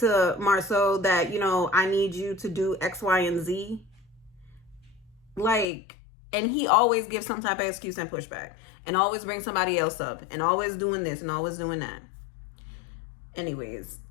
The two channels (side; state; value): right; drops out; at 5.7 s